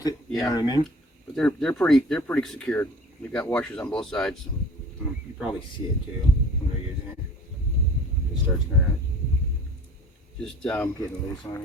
it. Yeah. You know what I mean? But they're pretty secured. You've got washers on both sides. You probably see it too when they're using it. It starts kind of Just getting loose on it.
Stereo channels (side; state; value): both; normal; correlation 0.47